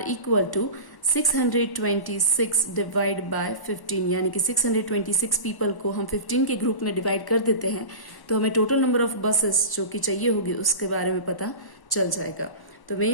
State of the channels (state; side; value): late; right; 1.1 ms